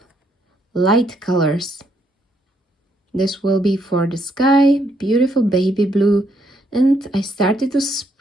light colors. This will be for the sky, beautiful baby blue, and I started to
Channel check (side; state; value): both; normal; correlation 0.73